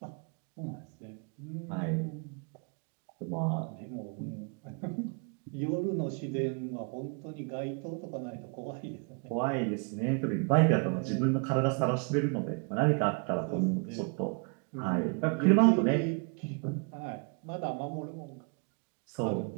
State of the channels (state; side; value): quieter; left; 36.5 dB